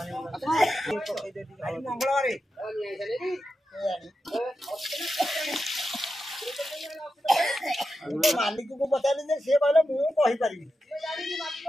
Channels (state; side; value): normal; both; correlation 0.89